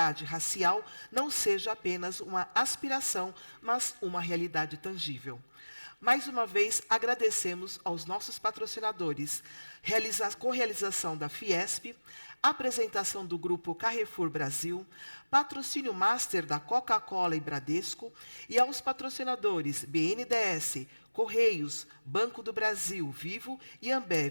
racial não seja apenas uma aspiração, mas uma realidade tangível. Mais uma vez, agradecemos aos nossos patrocinadores, correalização da Fiesp, apresentação do Grupo Carrefour Brasil, patrocínio master da Coca-Cola e Bradesco, e aos patrocinadores BNDES, Correios, Banco do Brasil, Vivo e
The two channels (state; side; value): inverted; both; correlation -1.00